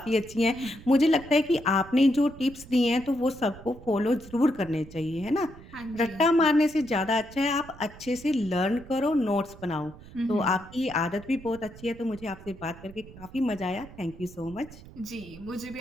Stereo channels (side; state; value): right; noise; rumble, 18 dB below the sound